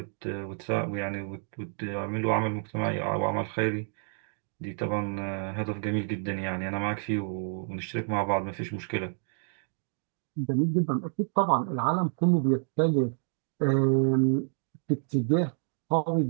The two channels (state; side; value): silent; left; 58 dB below the other